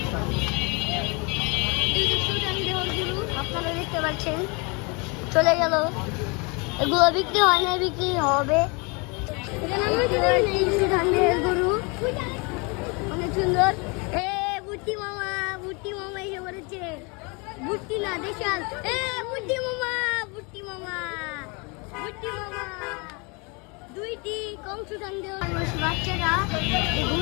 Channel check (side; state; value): right; quieter; 30.4 dB